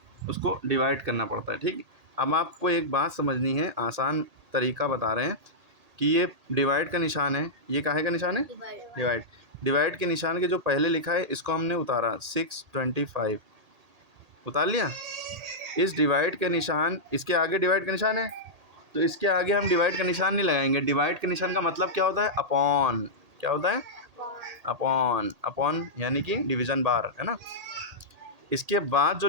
उसको डिवाइड करना पड़ता है, ठीक। अब आपको एक बात समझनी है, आसान तरीका बता रहे हैं कि ये डिवाइड का निशान है, ये काहे का निशान है? डिवाइड। डिवाइड के निशान के जो पहले लिखा है इसको हमने उतारा 625, उतार लिया। इस डिवाइड के निशान, इसके आगे डिवाइड का निशान है तो इसके आगे हम डिवाइड का निशान नहीं लगाएंगे। डिवाइड के निशान का मतलब क्या होता है? अपॉन। क्या होता है? अपॉन। अपॉन यानी कि डिवीजन बार, है ना? इसके बाद जो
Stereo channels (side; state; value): left; late; 1.8 ms